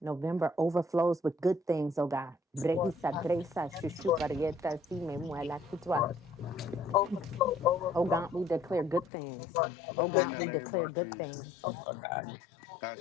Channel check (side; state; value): right; drops out; at 9.1 s